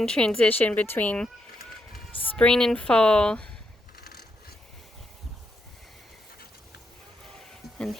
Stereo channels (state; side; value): normal; both; correlation 0.80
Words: transition between spring and fall. And